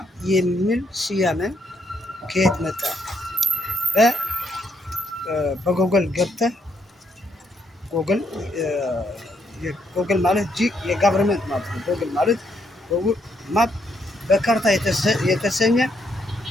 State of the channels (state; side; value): normal; both; correlation 0.74